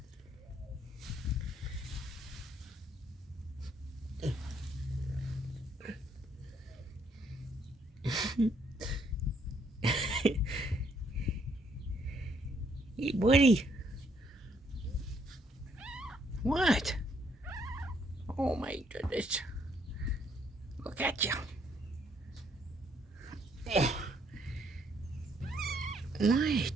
Hey, buddy. What? Oh my goodness. Look at you.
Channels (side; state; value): both; normal; correlation 0.69